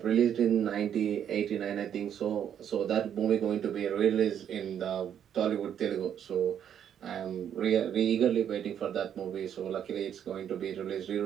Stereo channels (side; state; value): left; quieter; 9.2 dB